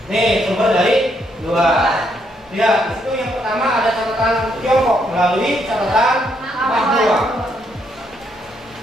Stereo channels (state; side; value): normal; both; correlation 0.74